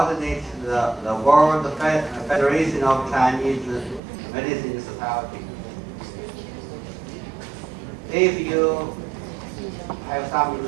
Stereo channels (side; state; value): left; drops out; at 4.0 s